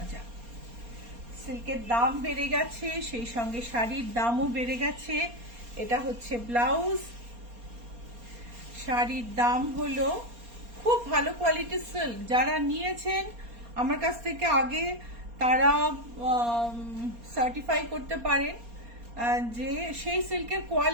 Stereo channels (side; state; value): left; late; 4.3 ms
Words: সিল্কের দাম বেড়ে গেছে, সেই সঙ্গে শাড়ির দামও বেড়ে গেছে। এটা হচ্ছে ব্লাউজ। শাড়ির দাম হলো, খুব ভালো কোয়ালিটির সিল্ক, যারা নিয়েছেন আমার কাছ থেকে আগে তারা সার্টিফাই করতে পারেন যে সেই সিল্কের